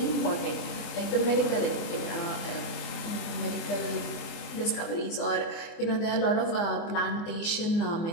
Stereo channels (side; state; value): right; late; 24 ms